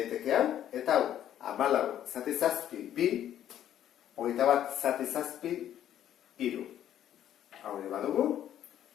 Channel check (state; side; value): quieter; right; 11.0 dB